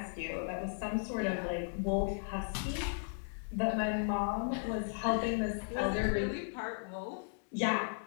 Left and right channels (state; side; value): silent; right; digital silence